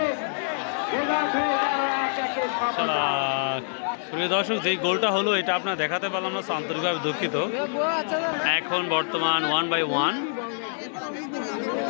প্রিয় দর্শক, যেই গোলটা হলো এটা আপনার দেখাতে পারলাম না, আন্তরিকভাবে দুঃখিত। এখন বর্তমান 1-1।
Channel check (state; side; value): silent; right; 61 dB below the other